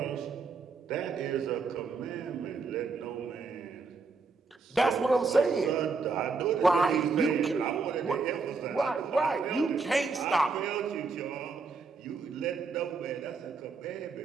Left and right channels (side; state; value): left; quieter; 4.4 dB